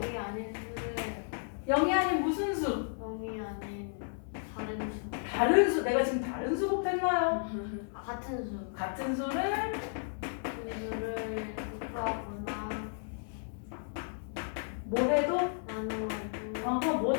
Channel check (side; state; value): right; silent; 55 dB below the other